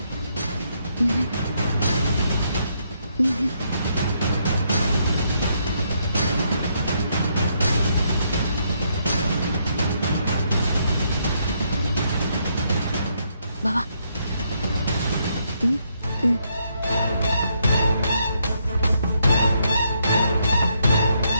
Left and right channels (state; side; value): inverted; both; correlation -0.75